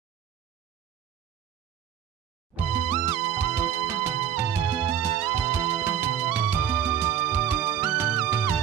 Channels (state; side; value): quieter; left; 9.6 dB